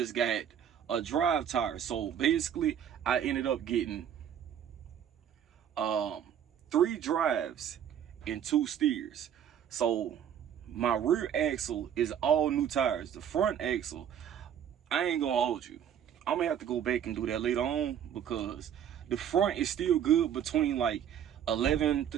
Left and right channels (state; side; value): quieter; left; 9.2 dB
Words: got a drive tire. So basically, I ended up getting 3 drives and 2 steers. So my rear axle is all new tires. The front axle, I ain't gonna hold you. I'm gonna have to go back and do that later on because the front is still good between like